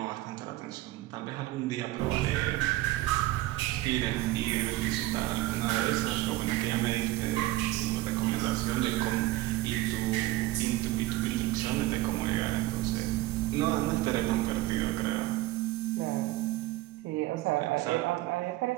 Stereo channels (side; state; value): left; quieter; 17.5 dB